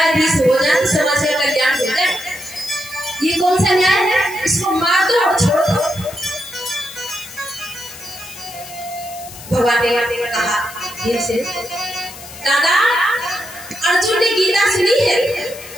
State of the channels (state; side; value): noise; left; hiss, 15 dB below the sound